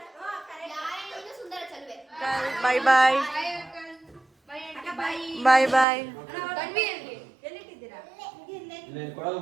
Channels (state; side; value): drops out; left; at 5.9 s